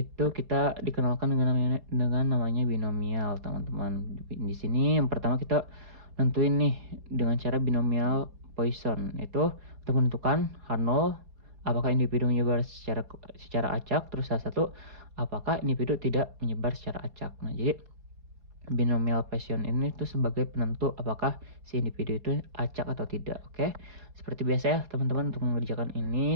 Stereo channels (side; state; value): left; late; 4.2 ms